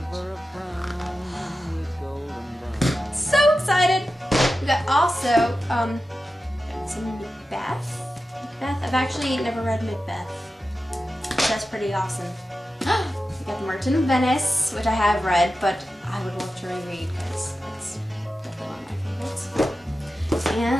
page. So excited. We got also got some Macbeth. I've actually never read Macbeth. So that's pretty awesome. We got The Merchant of Venice, which I have read, but I would love to reread because it's definitely one of my favorites.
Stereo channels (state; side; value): normal; both; correlation 0.93